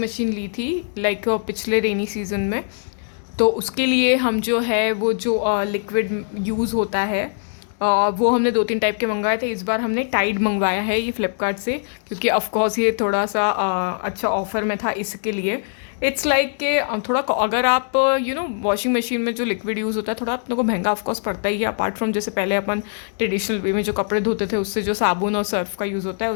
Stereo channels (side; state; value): right; silent; 64 dB below the other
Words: मशीन ली थी लाइक पिछले रेनी सीजन में। तो उसके लिए हम जो है वो जो लिक्विड यूज़ होता है वो हमने 2-3 टाइप के मंगवाए थे। इस बार हमने टाइड मंगवाया है ये फ्लिपकार्ट से, क्योंकि ऑफकोर्स ये थोड़ा सा अच्छा ऑफ़र में था इसके लिए। इट्स लाइक कि थोड़ा अगर आप वॉशिंग मशीन में जो लिक्विड यूज़ होता है थोड़ा अपने को महंगा ऑफकोर्स पड़ता ही है। अपार्ट फ्रॉम जैसे पहले अपन ट्रेडिशनल वे में जो कपड़े धोते थे उससे जो साबुन और सर्फ का यूज़ होता है